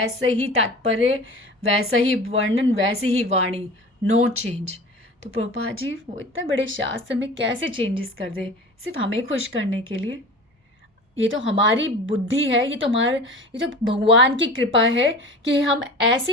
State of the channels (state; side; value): normal; both; correlation 0.37